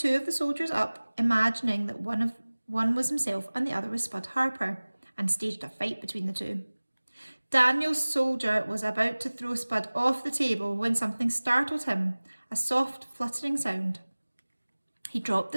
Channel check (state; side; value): inverted; both; correlation -1.00